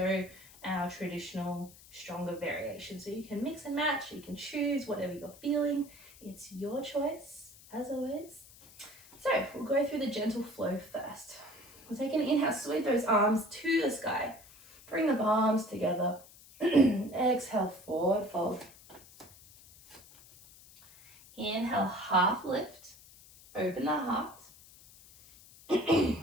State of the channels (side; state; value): left; noise; hiss, 22 dB below the sound